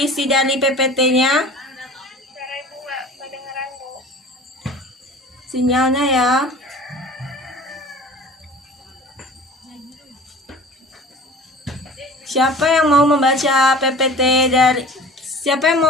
dari PPT-nya? Suara Ibu nggak kedengeran, Bu. Sinyalnya ya. Siapa yang mau membaca PPT dari Siapa yang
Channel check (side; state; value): both; normal; correlation 0.43